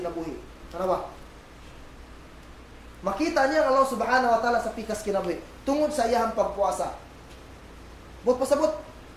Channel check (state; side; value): identical; both; correlation 1.00